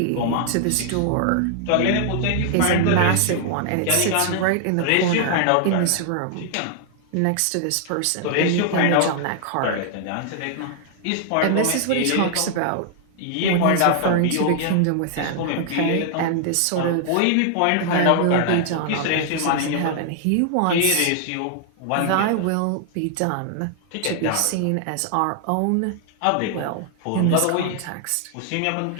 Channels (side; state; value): both; different; correlation 0.00